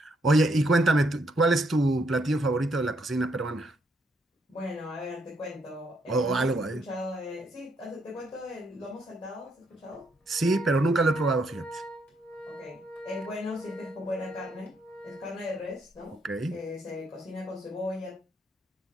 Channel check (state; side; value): normal; both; correlation 0.74